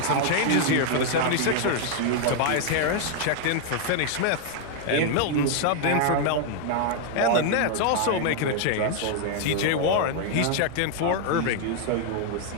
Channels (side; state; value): both; different; correlation 0.00